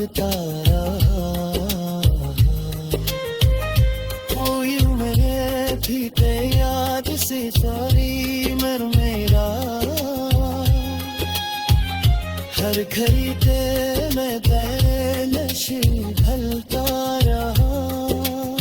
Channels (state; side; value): identical; both; correlation 1.00